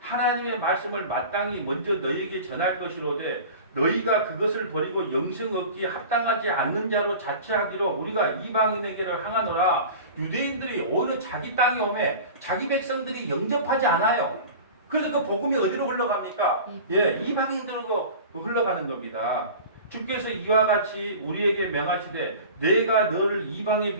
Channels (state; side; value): inverted; both; correlation -0.37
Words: 하나님의 말씀을 마땅히 먼저 너희에게 전할 것이로되 너희가 그것을 버리고 영생 얻기에 합당하지 않는 자로 자처하기로 우리가 이방인에게를 향하노라. 유대인들이 오히려 자기 땅에 오매 자기 백성들이 영접하지 않아요. 그래서 그 복음이 어디로 흘러갑니까? 예, 이방인들로 흘러가는 겁니다. 주께서 이와 같이 우리에게 명하시되 내가 너를 이방의